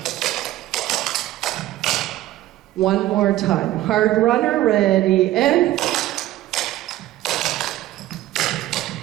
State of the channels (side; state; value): left; quieter; 15.1 dB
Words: One more time. Hard runner, ready, and